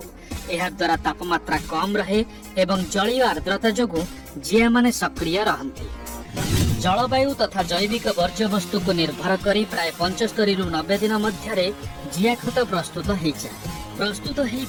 एहा द्वारा तापमात्रा कम रहे एवं जलीय आर्द्रता जोगु जिया माने सक्रिय रहंती। जलवायु तथा जैविक वर्ज्य वस्तु को निर्भर करी प्राय 75 रु 90 दिन मध्यरे जिया खत प्रस्तुत हो जाए। प्रस्तुत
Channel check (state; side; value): identical; both; correlation 1.00